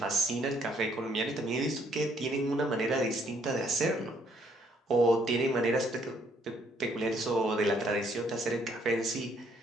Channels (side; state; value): both; normal; correlation 0.67